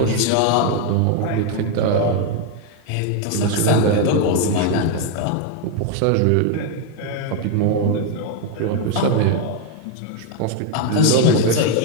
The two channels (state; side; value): different; both; correlation 0.01